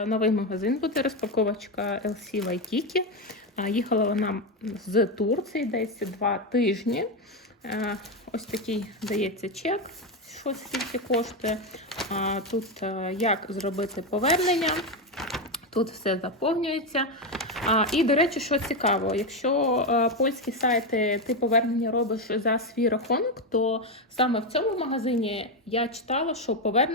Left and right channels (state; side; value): normal; both; correlation 0.09